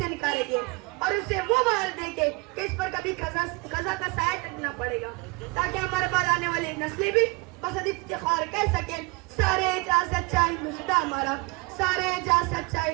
निकालेंगे और उसे वो बाहर देंगे कि इस पर कभी खजा का साया टकना पड़ेगा, ताकि हमारे बाद आने वाली नस्लें भी बस इफ्तिखार कह सके, सारे जहाँ सच्चा हिंदुस्तान हमारा, सारे जहाँ सच्चा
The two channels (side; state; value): left; quieter; 26.7 dB